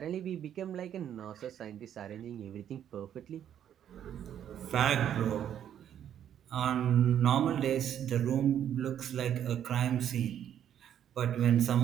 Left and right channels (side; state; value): left; quieter; 9.9 dB